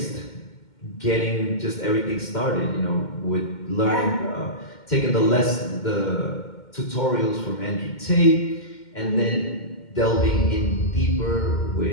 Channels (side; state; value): right; late; 2.1 ms